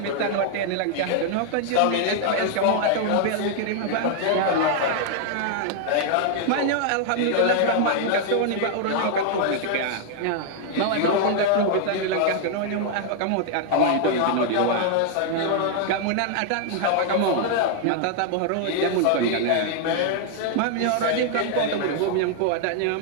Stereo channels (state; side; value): different; both; correlation 0.00